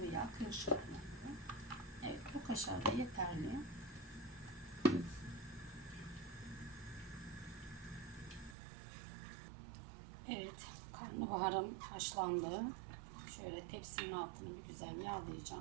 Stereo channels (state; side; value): drops out; left; at 8.6 s